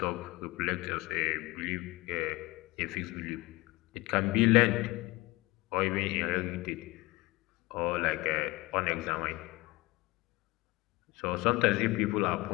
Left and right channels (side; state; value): right; quieter; 21.6 dB